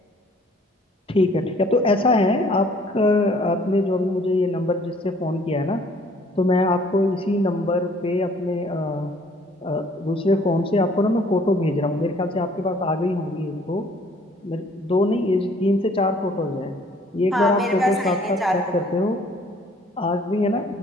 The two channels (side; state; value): both; normal; correlation 0.58